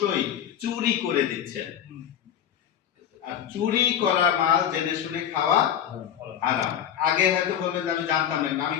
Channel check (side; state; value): right; quieter; 9.6 dB